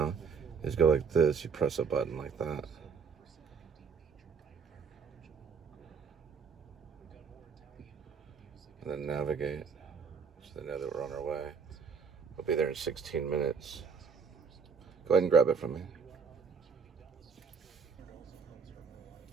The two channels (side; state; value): left; quieter; 5.8 dB